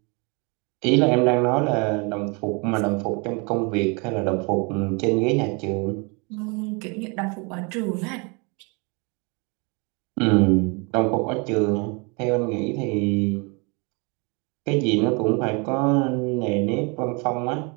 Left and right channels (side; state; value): left; quieter; 31.4 dB